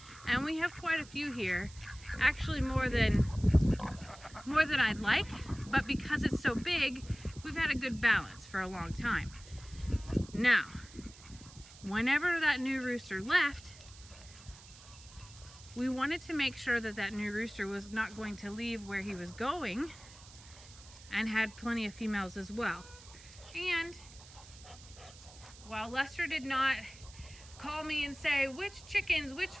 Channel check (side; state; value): right; noise; hiss, 20 dB below the sound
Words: And we have quite a few here, actually more than I'd like, but because it's so big, we've had a good balance for a long time. Now, whenever that new rooster left, we wanted to make sure that that new rooster was not going to leave where he was going and had plenty of females as well. And while Lester did not call me and say which chickens, which